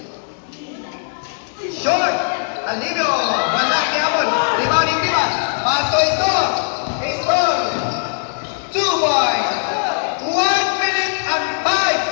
Short. Alino. Wala kiamon. Rebounding Timan. Pato score. Score. 2 points. 1 minute and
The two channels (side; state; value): right; silent; 61 dB below the other